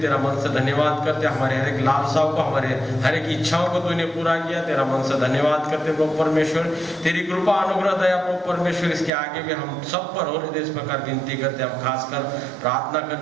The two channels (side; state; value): left; drops out; at 9.1 s